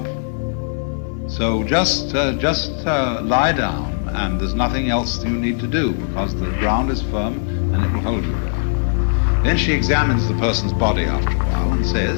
So just lie down, and there's nothing else you need to do, because the ground is firm and it will hold you there. Then she examines the person's body after a while and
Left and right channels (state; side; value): silent; right; digital silence